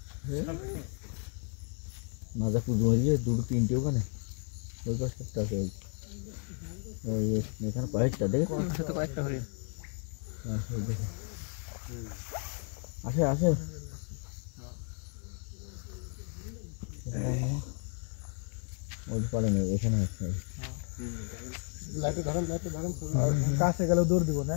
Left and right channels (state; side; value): quieter; right; 39.6 dB